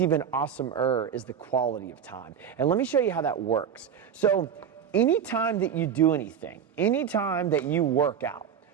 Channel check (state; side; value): quieter; left; 8.1 dB